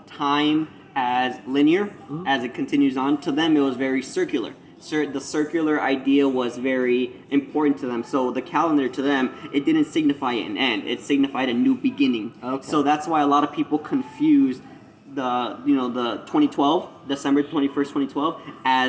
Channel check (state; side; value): identical; both; correlation 1.00